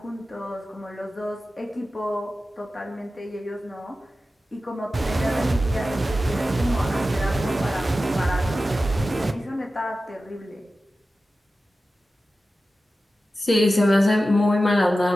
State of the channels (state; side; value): normal; both; correlation 0.94